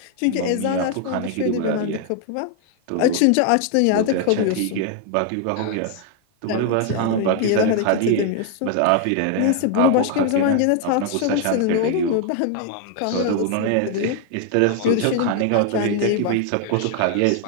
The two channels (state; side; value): different; both; correlation 0.00